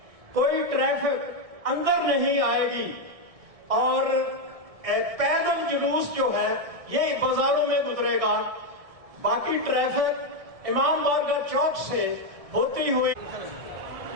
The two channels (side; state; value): left; late; 1.6 ms